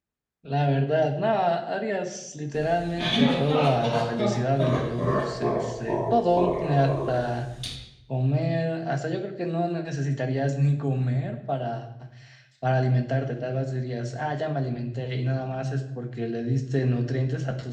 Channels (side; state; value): both; identical; correlation 1.00